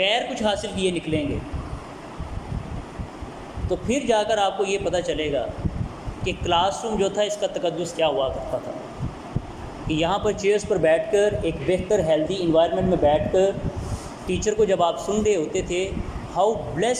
کچھ حاصل کیے نکلیں گے، تو پھر جا کر آپ کو یہ پتہ چلے گا کہ کلاس روم جو تھا اس کا تقدس کیا ہوا کرتا تھا، کہ یہاں پر چیئرز پر بیٹھ کر ایک بہتر ہیلدی انوائرمنٹ میں بیٹھ کر ٹیچر کو جب آپ سن رہے ہوتے تھے، how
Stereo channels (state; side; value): identical; both; correlation 1.00